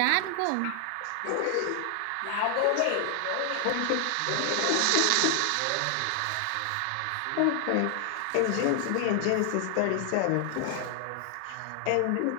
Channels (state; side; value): different; both; correlation 0.00